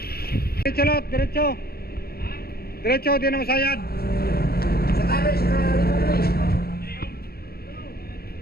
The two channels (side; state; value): right; late; 0.45 ms